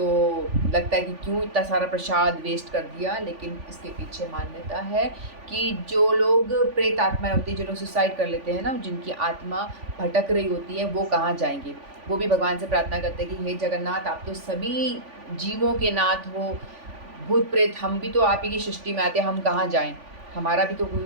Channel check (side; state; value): left; late; 3.5 ms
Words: लगता है कि क्यों इतना सारा प्रसाद वेस्ट कर दिया, लेकिन इसके पीछे मान्यता है कि जो लोग प्रेत आत्माएं होती हैं, जो लोग सुसाइड कर लेते हैं ना, जिनकी आत्मा भटक रही होती है, वो कहाँ जाएंगे। वो भी भगवान से प्रार्थना करते हैं कि हे जगन्नाथ, आप तो सभी जीवों के नाथ हो, भूत प्रेत हम भी तो आप ही की सृष्टि में आते हैं, हम कहाँ जाएं, हमारा भी तो कोई